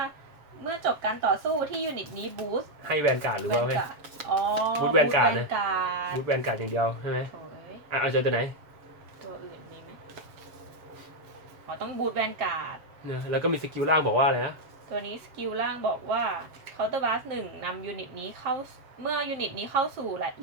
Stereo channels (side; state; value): left; late; 7.2 ms